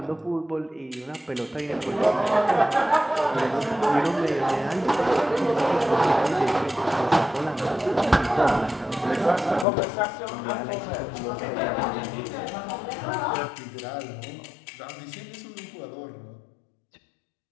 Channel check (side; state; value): right; drops out; at 9.7 s